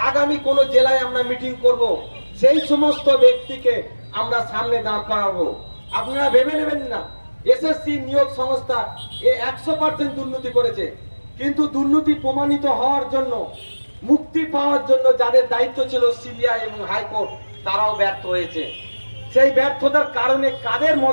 আগামী কোন জেলায় আমরা মিটিং করব, সেই সমস্ত ব্যক্তিকে আমরা সামনে দাঁড় করাবো। আপনারা ভেবে নেবেন না এসএসসি নিয়োগ সংস্থা 100% দুর্নীতি করেছে, কিন্তু দুর্নীতি প্রমাণিত হওয়ার জন্য, মুক্তি পাওয়ার জন্য যাদের দায়িত্ব ছিল সিবিআই এবং হাইকোর্ট, তারাও ব্যর্থ হয়েছে। সেই ব্যর্থতার কারণে কাদের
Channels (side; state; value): both; inverted; correlation -1.00